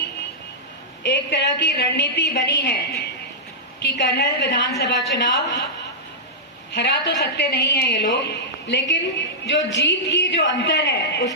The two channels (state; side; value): normal; both; correlation -0.12